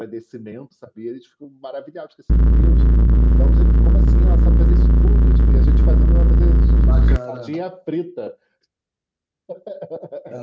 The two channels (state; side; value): identical; both; correlation 1.00